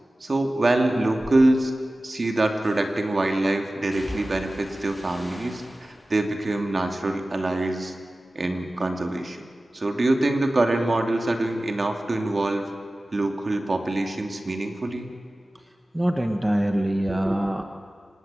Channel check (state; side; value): normal; both; correlation 0.96